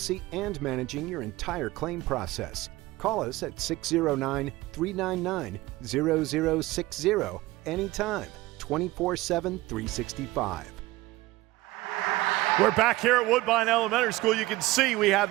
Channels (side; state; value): left; quieter; 18.9 dB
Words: and managing your entire claim process. Call us at 609-399-0060 anytime, 24/7, 365. We're back here at Woodbine Elementary School. You can see we have